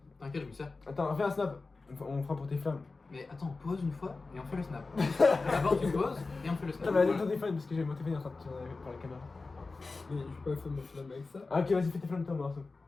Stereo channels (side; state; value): right; quieter; 3.8 dB